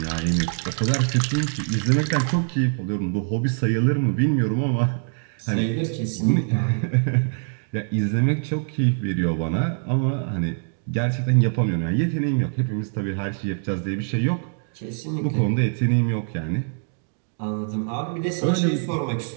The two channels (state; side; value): silent; left; 63 dB below the other